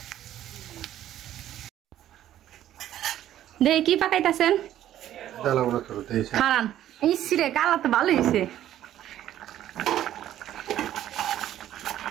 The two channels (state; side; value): quieter; left; 12.2 dB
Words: দেখি কি পাকাইতেছেন। খারান ইসরে কালা তো ভালো হয়েছে